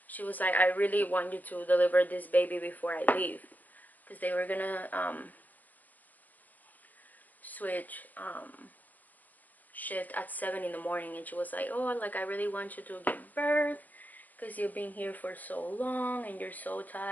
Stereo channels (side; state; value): right; late; 0.083 ms